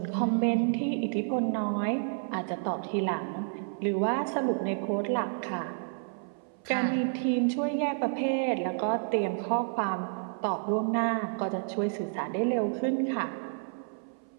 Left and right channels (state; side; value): silent; left; 58 dB below the other